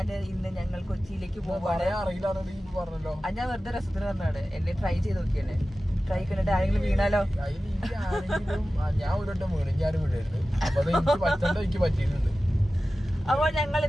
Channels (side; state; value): both; normal; correlation 0.95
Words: ഞങ്ങൾ കൊച്ചിയിലേക്ക് പോവാണ്. ഞാൻ വെറുതെ രസത്തിന് പറഞ്ഞാണ്, എന്നെ ട്രൈ ചെയ്ത് നോക്കിയാണ്. ട്രൈ കണ്ടിട്ട് ആരെങ്കിലും വീണാലോ? ഞാൻ ഒരു പറ്റിയിട്ടുണ്ട്. അപ്പോൾ ഞങ്ങൾ